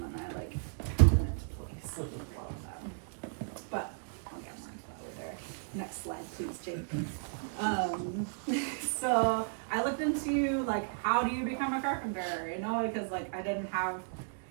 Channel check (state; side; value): silent; left; digital silence